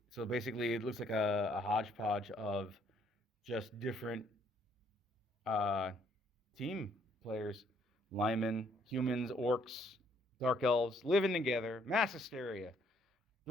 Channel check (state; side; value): normal; both; correlation 0.67